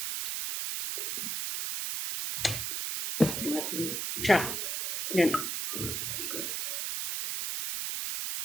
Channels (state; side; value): noise; right; hiss, 2 dB below the sound